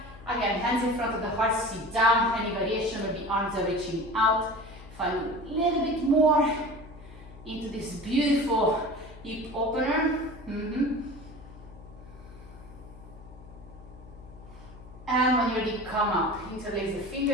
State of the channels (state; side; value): noise; left; hum, 18 dB below the sound